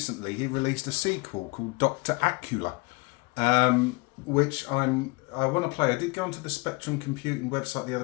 he released a sequel called Doctor Acula, which I want to play. I did go onto the Spectrum Computing website the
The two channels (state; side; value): quieter; right; 26.4 dB